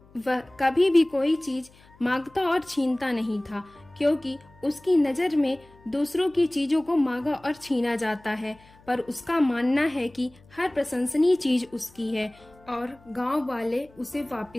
वह कभी भी कोई चीज मांगता और छीनता नहीं था, क्योंकि उसकी नजर में दूसरों की चीजों को मांगा और छीना जाता है, पर उसका मानना है कि हर प्रशंसनीय चीज उसकी है और गांव वाले उसे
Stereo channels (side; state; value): left; noise; hum, 27 dB below the sound